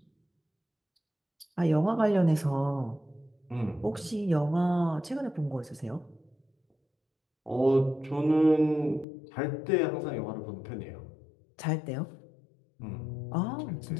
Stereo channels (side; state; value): right; drops out; at 9.1 s